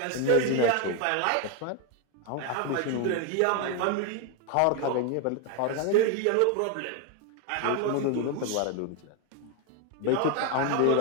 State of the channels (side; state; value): both; different; correlation 0.01